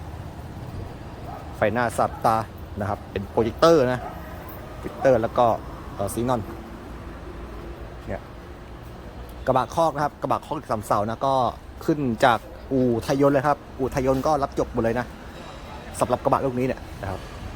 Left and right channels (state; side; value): identical; both; correlation 1.00